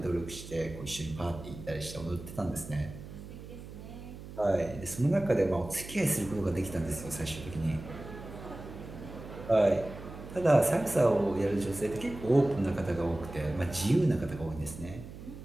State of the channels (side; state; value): right; noise; hum, 13 dB below the sound